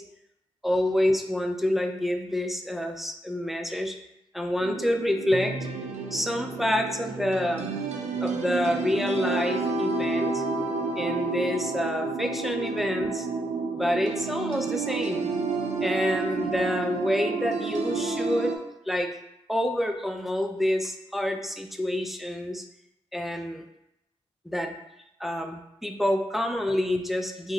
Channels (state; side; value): normal; both; correlation 0.82